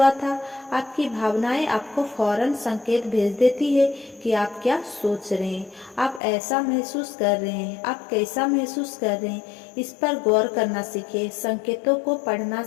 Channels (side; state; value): right; drops out; at 6.2 s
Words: था। आपकी भावनाएं आपको फौरन संकेत भेज देती है कि आप क्या सोच रहे हैं, आप ऐसा महसूस कर रहे हैं, आप कैसा महसूस कर रहे हैं। इस पर गौर करना सीखें, संकेतों को पढ़ना